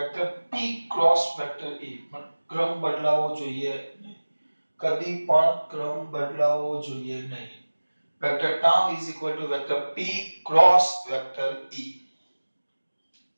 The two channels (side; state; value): both; inverted; correlation -1.00